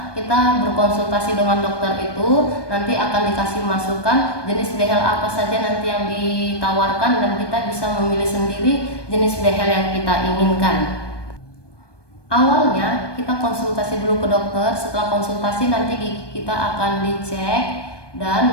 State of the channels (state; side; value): late; right; 1.2 ms